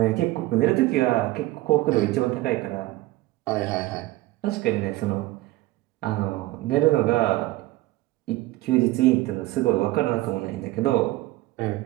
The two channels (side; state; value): left; quieter; 18.1 dB